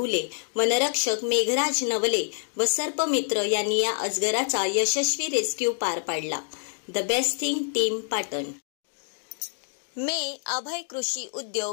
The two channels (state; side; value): silent; right; digital silence